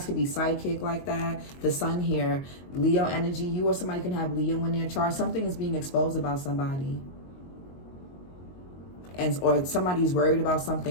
could be psychic like that. The sun here, Leo energy. You or somebody can have Leo in their chart. Something is being exposed about somebody. Or somebody's worried about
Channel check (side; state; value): right; late; 22 ms